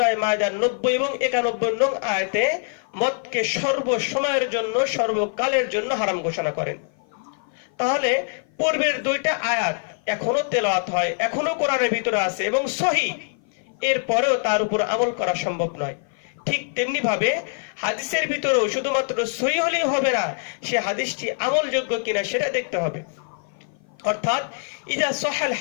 মায়দার 90 এবং 91 নং আয়াতে মদকে সর্বসময়ের জন্য, সর্বকালের জন্য হারাম ঘোষণা করেন। তাহলে পূর্বের দুইটা আয়াত এখনো তেলাওয়াত হয়, এখনো কোরআনের ভিতরে আছে এবং সহিহ, এরপরেও তার উপর আমল করা সম্ভব নয়। ঠিক তেমনি ভাবে হাদিসের ভিতরেও শুধুমাত্র সহিহ হলেই হবে না, সে হাদিসটি আমলযোগ্য কিনা সেটা দেখতে হবে। অর্থাৎ ইযা সাহাল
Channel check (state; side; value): silent; right; 55 dB below the other